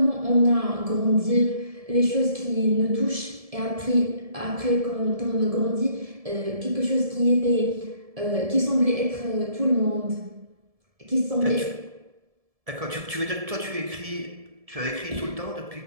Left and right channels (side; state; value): left; late; 1.7 ms